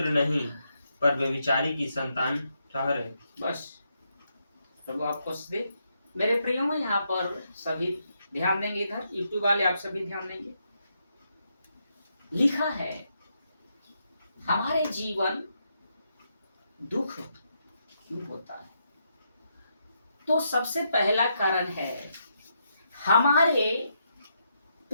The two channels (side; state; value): both; inverted; correlation -0.80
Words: नहीं पर व्यभिचारी की संतान ठहरे। बस प्रभु आपको दे। मेरे प्रियो में यहाँ पर सभी ध्यान देंगे, इधर यूट्यूब वाले आप सभी ध्यान देंगे। लिखा है हमारे जीवन दुख क्यों होता है, तो सबसे पहला कारण है हमारे